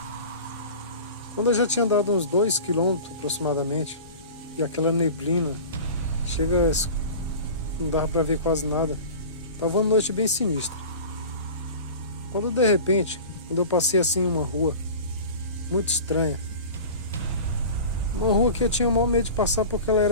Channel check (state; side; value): inverted; both; correlation -0.36